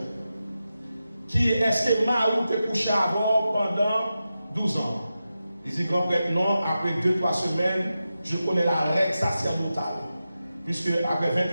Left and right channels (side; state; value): both; inverted; correlation -0.92